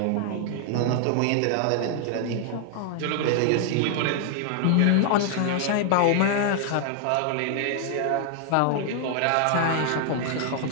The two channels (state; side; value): different; both; correlation 0.00